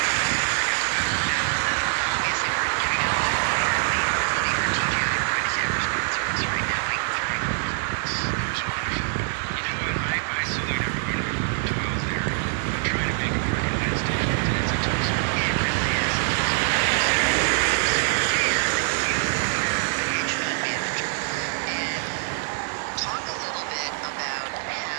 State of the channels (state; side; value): silent; left; 62 dB below the other